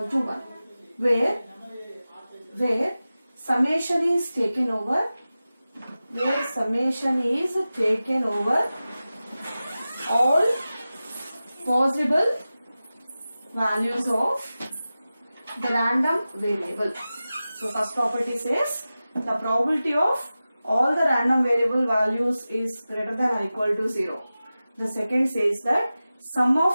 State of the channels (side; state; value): both; inverted; correlation -0.95